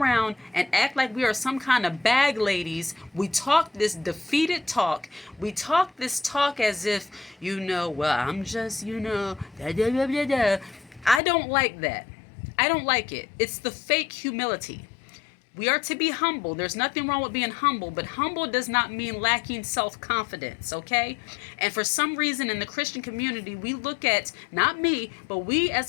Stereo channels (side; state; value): right; drops out; at 11.2 s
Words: and act like we are some kind of bag ladies. We talk this defeated talk. We talk this talk as if, I'm just, da, da, da, da, da. I don't like that. I don't like it. It's the fake humility. We are to be humble. There's nothing wrong with being humble, but humble does not mean lacking self-confidence, okay? And for some reason in the Christian community, we look at, not me, but we as